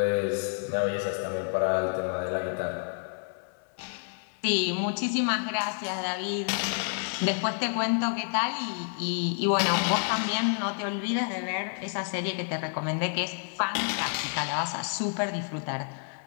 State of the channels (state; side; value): silent; right; 58 dB below the other